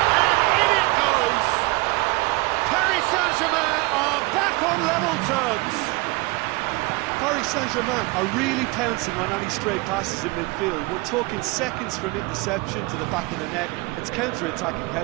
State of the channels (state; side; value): quieter; left; 24.4 dB